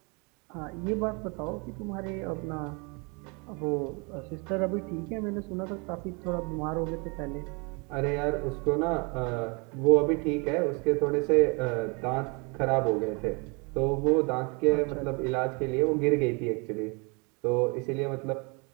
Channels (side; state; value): left; quieter; 31.7 dB